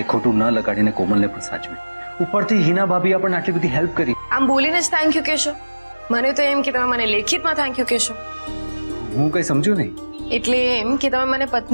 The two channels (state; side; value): inverted; both; correlation -1.00